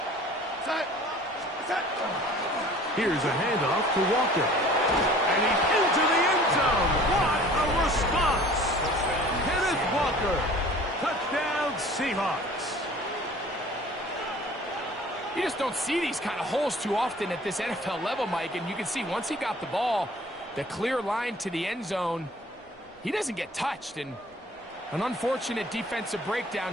Here's a handoff to Walker. And he's into the end zone. What a response. Kenneth Walker. Touchdown, Seahawks. You just don't see these kind of holes too often at this NFL level, Mike. And you can see once he got the ball, the clear line to the end zone, he doesn't get touched. And an unfortunate defensive breakdown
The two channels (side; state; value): both; normal; correlation 0.48